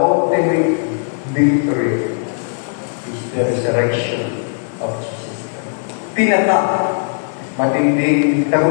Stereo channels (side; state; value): right; silent; digital silence